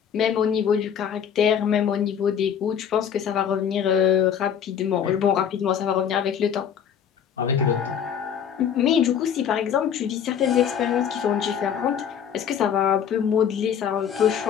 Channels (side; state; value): right; quieter; 8.3 dB